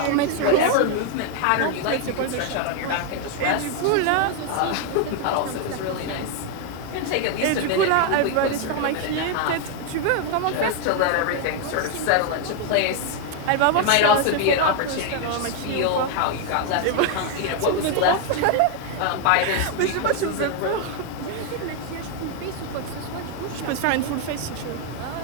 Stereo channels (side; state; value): both; different; correlation 0.00